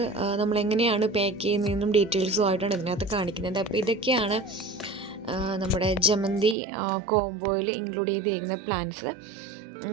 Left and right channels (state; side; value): drops out; left; at 6.6 s